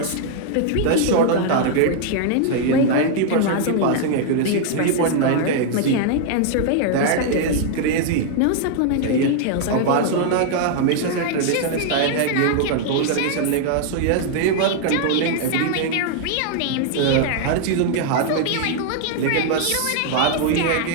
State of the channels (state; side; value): different; both; correlation 0.00